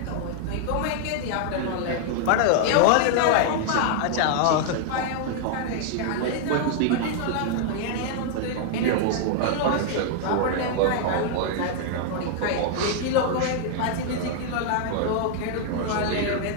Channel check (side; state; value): both; different; correlation -0.01